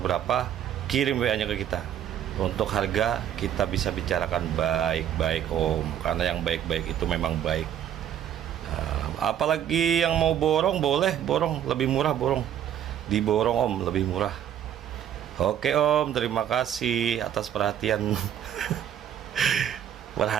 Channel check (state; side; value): quieter; left; 10.1 dB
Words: berapa, kirim WA-nya ke kita. Untuk harga kita bisa bicarakan baik-baik Om, karena yang baik-baik itu memang baik. Apalagi yang mau borong, boleh borong, lebih murah borong. Diborong Om, lebih murah. Oke Om, terima kasih atas perhatiannya.